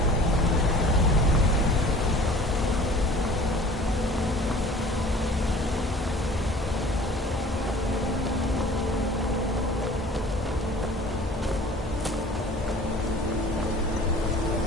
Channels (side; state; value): both; normal; correlation 0.47